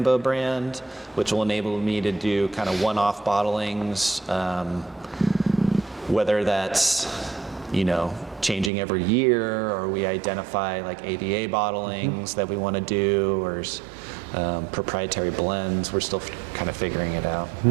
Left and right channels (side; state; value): left; drops out; at 8.7 s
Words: brand, which will enable me to do kind of one-off bottlings, whether that's, changing every year, or we identify AVA bottlings that we want to do, or proprietary blends. We're still kind of figuring it out.